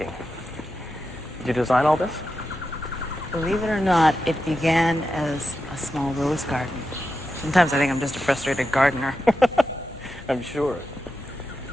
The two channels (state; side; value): noise; left; hum, 19 dB below the sound